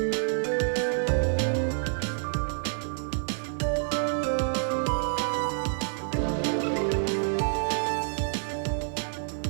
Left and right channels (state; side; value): silent; left; digital silence